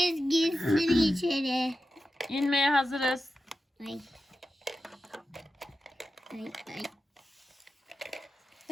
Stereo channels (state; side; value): normal; both; correlation 0.92